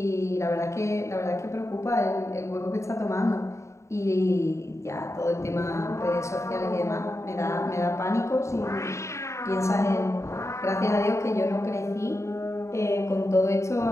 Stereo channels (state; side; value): late; right; 0.14 ms